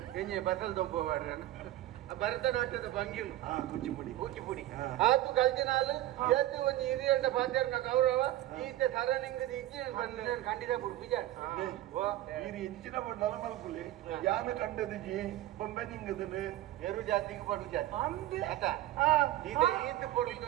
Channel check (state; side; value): quieter; left; 14.7 dB